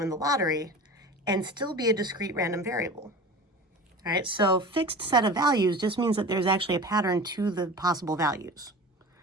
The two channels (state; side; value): normal; both; correlation 0.36